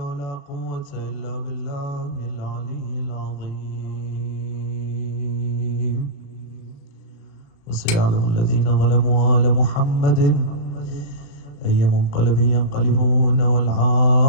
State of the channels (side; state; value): right; late; 36 ms